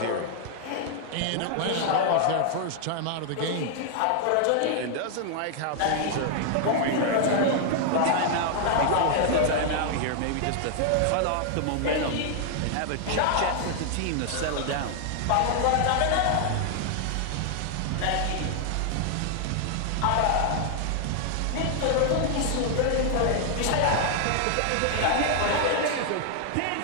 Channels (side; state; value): both; different; correlation 0.00